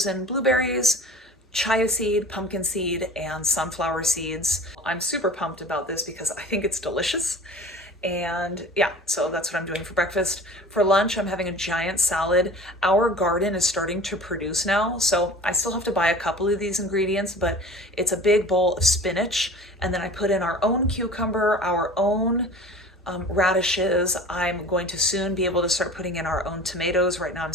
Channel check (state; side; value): normal; both; correlation 0.41